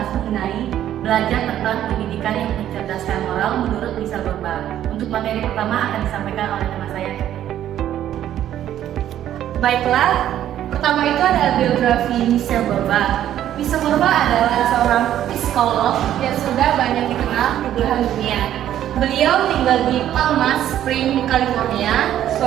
mengenai belajar tentang pendidikan yang mencerdaskan moral menurut Michelle Borba. Untuk materi pertama akan disampaikan oleh teman saya. Baiklah, pertama itu adalah biografi Michelle Borba. Michelle Borba adalah seorang psikolog yang sudah banyak dikenal di belahan dunia. Beliau tinggal di Palm Springs, California.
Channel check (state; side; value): quieter; left; 11.5 dB